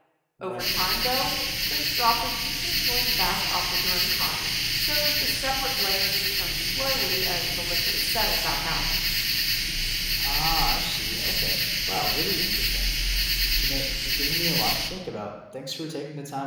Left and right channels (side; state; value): both; identical; correlation 1.00